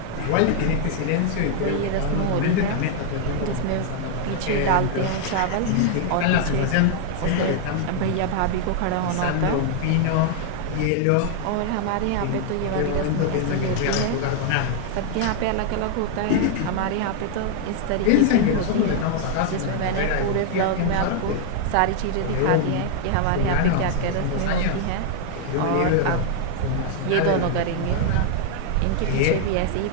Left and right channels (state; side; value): different; both; correlation 0.00